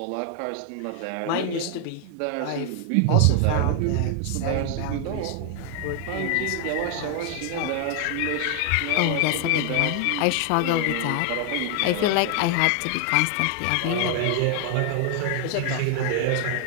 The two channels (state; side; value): different; both; correlation 0.00